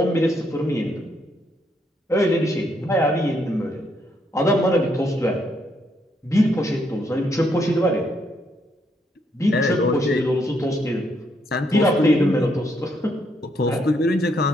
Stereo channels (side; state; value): both; normal; correlation 0.74